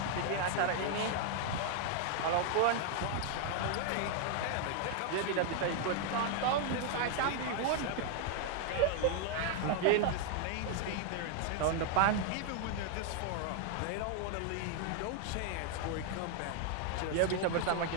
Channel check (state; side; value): different; both; correlation 0.00